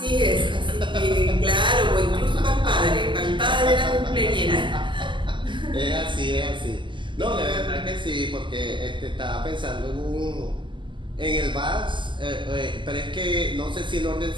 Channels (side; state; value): left; late; 0.24 ms